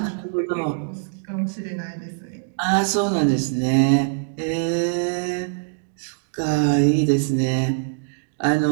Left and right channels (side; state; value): left; silent; digital silence